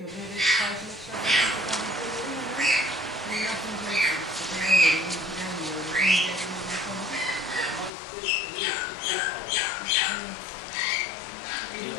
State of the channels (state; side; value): drops out; right; at 7.9 s